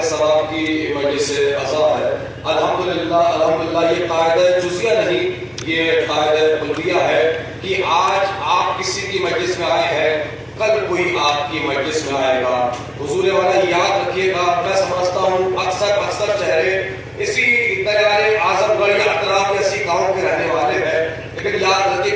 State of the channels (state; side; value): identical; both; correlation 1.00